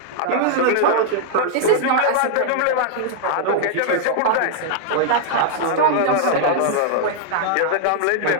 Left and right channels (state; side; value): different; both; correlation -0.01